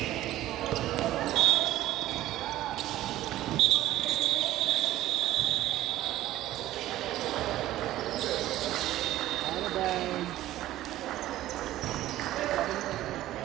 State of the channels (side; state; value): left; quieter; 14.6 dB